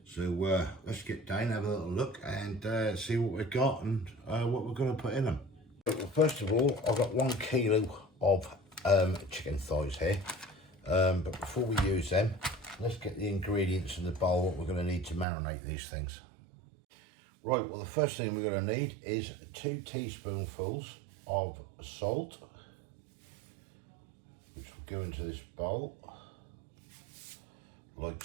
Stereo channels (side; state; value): left; drops out; at 15.2 s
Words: So let's get down, have a little look and see what we've got and what we're going to put in them. Well, first of all, I've got 1 kilo of chicken thighs here. But before we use them, let's get the ingredients in the bowl, what we're going to need to marinate these things. Right, well the first thing we're going to need is 2 teaspoonfuls of salt, which will go into this bowl, like